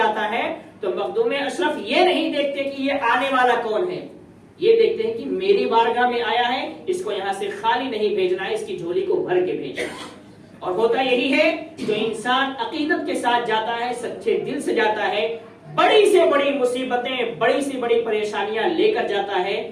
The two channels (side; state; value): both; identical; correlation 1.00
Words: ہے تو مخدوم اشرف یہ نہیں دیکھتے کہ یہ آنے والا کون ہے، یہ دیکھتے ہیں کہ میری بارگاہ میں آیا ہے، اس کو یہاں سے خالی نہیں بھیجنا ہے، اس کی جھولی کو بھر کے بھیجنا ہے۔ اور ہوتا یہی ہے، جو انسان عقیدت کے ساتھ جاتا ہے، سچے دل سے جاتا ہے، بڑی سے بڑی مصیبتیں، بڑی سے بڑی پریشانیاں لے کر جاتا ہے،